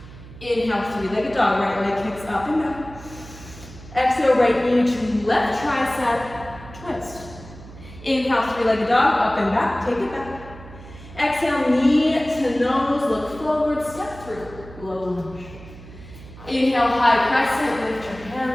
Inhale, three-legged dog, right leg kicks up and back. Exhale, right knee to left tricep, twist. Inhale, three-legged dog, up and back, take it back. Exhale, knee to nose, look forward, step through, low lunge. Inhale, high crescent, lift your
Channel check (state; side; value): noise; right; hum, 17 dB below the sound